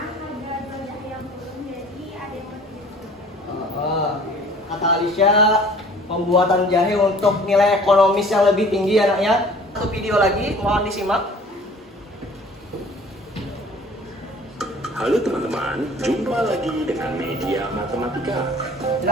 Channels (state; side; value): normal; both; correlation 0.49